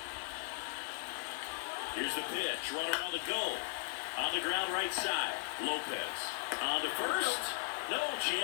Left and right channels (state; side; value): silent; right; 53 dB below the other